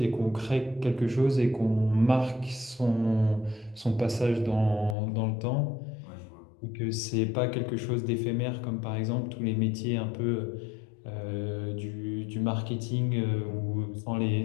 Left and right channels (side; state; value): right; drops out; at 5.0 s